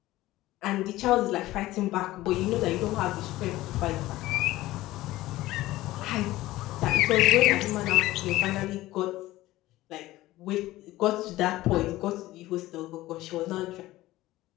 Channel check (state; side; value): quieter; right; 16.9 dB